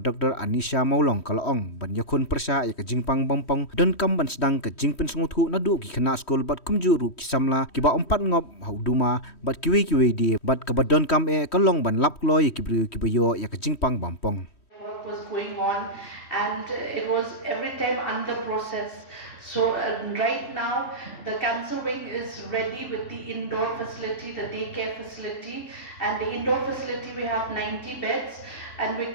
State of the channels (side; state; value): right; late; 3.1 ms